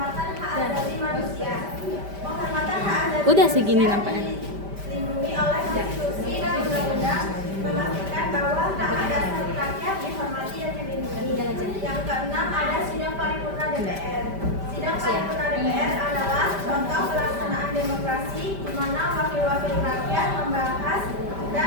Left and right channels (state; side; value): late; left; 5.1 ms